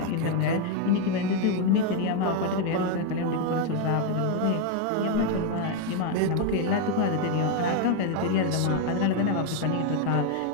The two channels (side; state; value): both; different; correlation 0.01